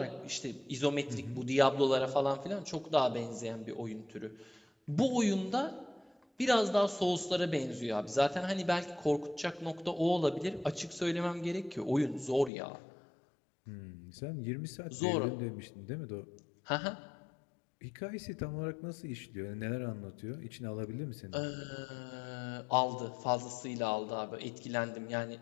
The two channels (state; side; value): drops out; right; at 12.5 s